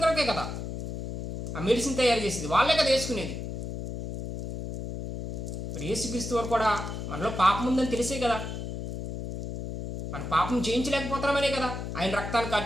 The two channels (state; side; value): noise; left; hum, 6 dB below the sound